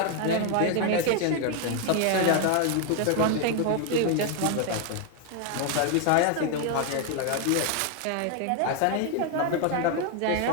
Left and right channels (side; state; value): both; different; correlation 0.01